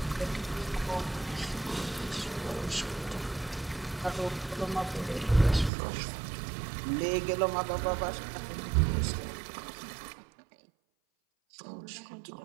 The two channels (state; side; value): drops out; left; at 5.7 s